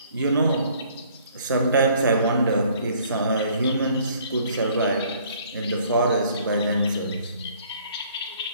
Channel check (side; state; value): both; inverted; correlation -0.59